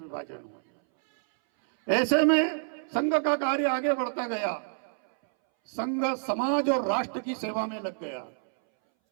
हुआ। ऐसे में संघ का कार्य आगे बढ़ता गया, संघ समाज और राष्ट्र की सेवा में लग गया।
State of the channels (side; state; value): left; silent; 59 dB below the other